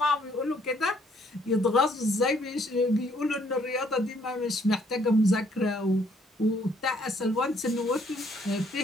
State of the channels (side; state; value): both; normal; correlation 0.66